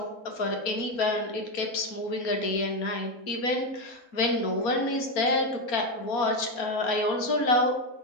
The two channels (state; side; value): late; right; 4.3 ms